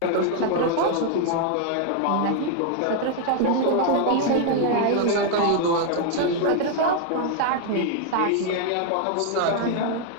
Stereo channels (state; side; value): different; both; correlation 0.00